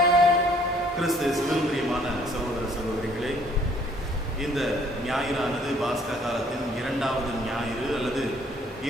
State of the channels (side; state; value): both; normal; correlation 0.60